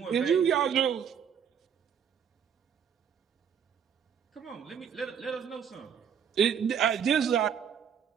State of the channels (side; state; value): left; quieter; 7.9 dB